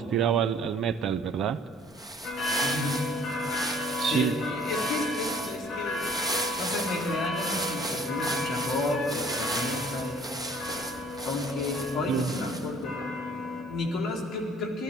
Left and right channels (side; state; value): both; normal; correlation 0.55